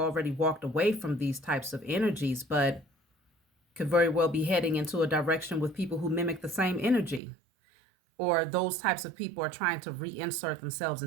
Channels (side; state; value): left; drops out; at 7.2 s